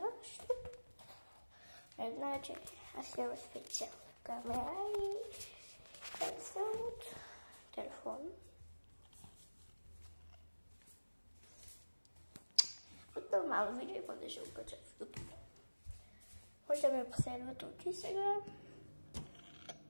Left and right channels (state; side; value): inverted; both; correlation -1.00